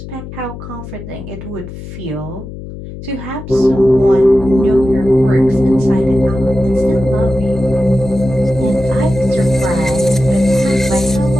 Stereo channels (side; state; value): left; noise; hum, 12 dB below the sound